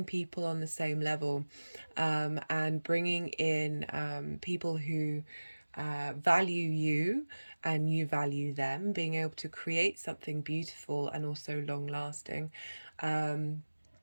people on the same level, and bringing in people who value you and you value them, being able to create something beautiful and also long lasting. And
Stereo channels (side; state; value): both; inverted; correlation -1.00